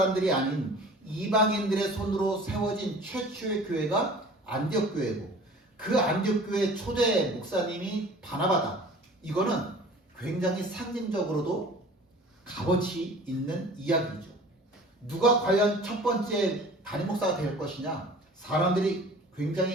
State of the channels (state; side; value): normal; both; correlation 0.45